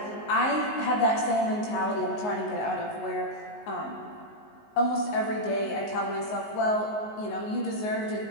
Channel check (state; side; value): late; right; 19 ms